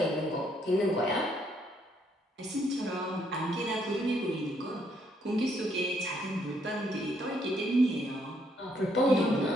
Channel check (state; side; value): normal; both; correlation 0.71